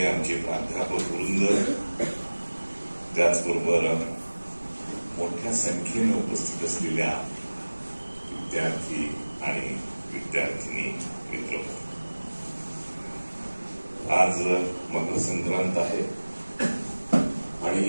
आमचे प्राध्यापक वृंद, त्याचबरोबर मोठ्या संख्येने उपस्थित असलेल्या विद्यार्थी आणि विद्यार्थिनी मित्र, आज मकर संक्रांत आहे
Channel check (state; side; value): inverted; both; correlation -1.00